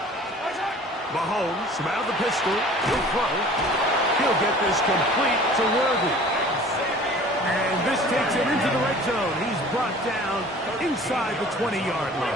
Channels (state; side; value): normal; both; correlation 0.47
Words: Mahomes from out of the pistol. He'll throw. He'll get this complete to Worthy. And this takes him into the red zone. He's brought down inside the 20-yard